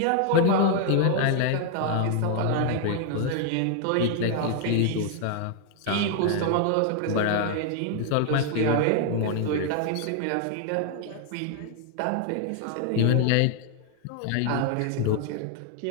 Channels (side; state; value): both; different; correlation 0.00